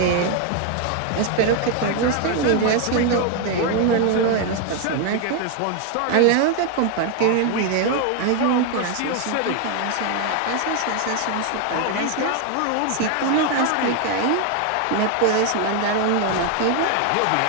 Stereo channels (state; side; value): different; both; correlation 0.01